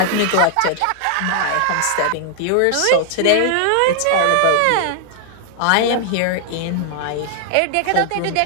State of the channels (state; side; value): different; both; correlation 0.00